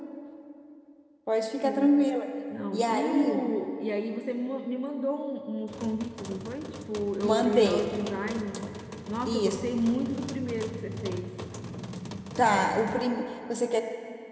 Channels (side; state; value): both; identical; correlation 1.00